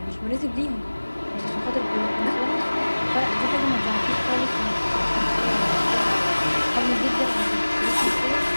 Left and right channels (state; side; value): inverted; both; correlation -1.00